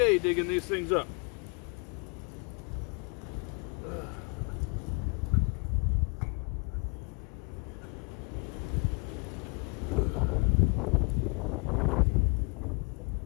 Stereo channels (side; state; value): right; quieter; 35.5 dB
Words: digging these things up.